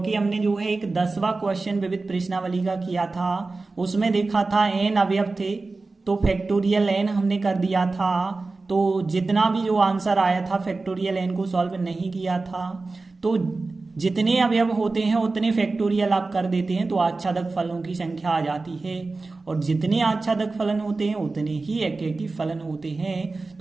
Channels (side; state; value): left; quieter; 3.6 dB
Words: हमने जो है एक 10वां क्वेश्चन विविध प्रश्नावली का किया था, उसमें देखा था n अवयव थे तो फैक्टोरियल n हमने कर दिया था। तो जितना भी जो आंसर आया था फैक्टोरियल n को सॉल्व नहीं किया था, तो जितने अवयव होते हैं उतने फैक्टोरियल आप कर देते हैं तो आच्छादक फलन की संख्या आ जाती है, और जितने आच्छादक फलन होते हैं उतने ही एकेकी फलन होते हैं।